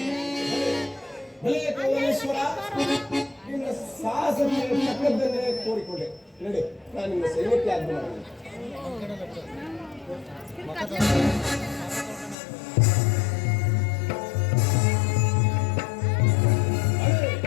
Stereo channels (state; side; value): drops out; right; at 12.4 s